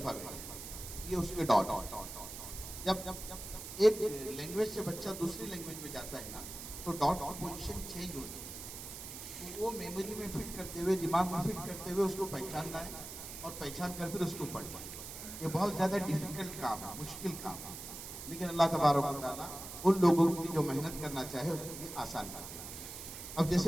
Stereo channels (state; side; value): noise; right; hiss, 10 dB below the sound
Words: ये उसके डॉट। जब एक लैंग्वेज से बच्चा दूसरी लैंग्वेज में जाता है ना तो डॉट की पोजीशन चेंज होती है। तो वो मेमोरी में फिट करते हुए, दिमाग में फिट करते हुए उसको पहचानना है और पहचान कर फिर उसको पढ़ना है। ये बहुत ज़्यादा डिफिकल्ट काम है, मुश्किल काम है, लेकिन अल्लाह तबारक व तआला उन लोगों की जो मेहनत करना चाहे उसके लिए आसान कर दिया। अब